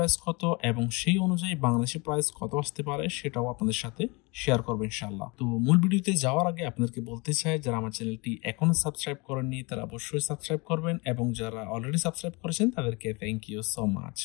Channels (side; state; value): right; quieter; 27.7 dB